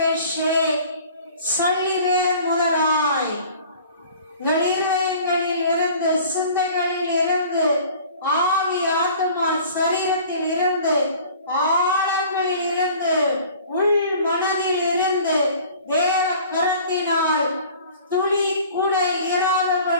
உங்கள் இருதயங்களில் இருந்து, சிந்தைகளில் இருந்து, ஆவி, ஆத்மா, சரீரத்தில் இருந்து, ஆழங்களில் இருந்து, உள் மனதில் இருந்து தேவ கரத்தினால் துளி கூட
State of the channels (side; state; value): both; inverted; correlation -0.47